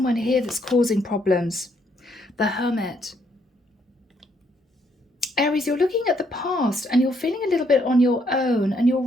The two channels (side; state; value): both; normal; correlation 0.71